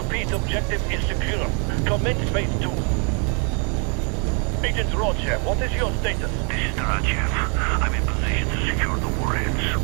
objective is secure. Commence phase 2. Agent Rodchev, what is your status? This is Darachev. I'm in position to secure the warheads.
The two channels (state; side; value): quieter; left; 37.7 dB